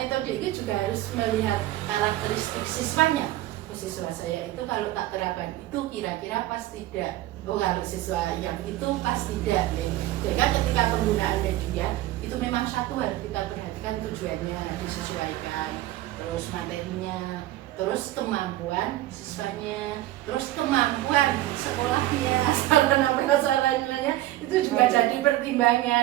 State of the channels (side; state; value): left; quieter; 15.6 dB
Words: itu juga harus melihat karakteristik siswanya. Siswa saya itu kalau tak terapkan itu kira-kira pas tidak. Oh, kalau siswa yang itu pas tidak ya. Jadi kan ketika penggunaan media itu memang satu harus kita perhatikan tujuannya disesuaikan, terus materinya, terus kemampuan siswanya, terus kemampuan sekolahnya, sarana prasarananya itu juga jadi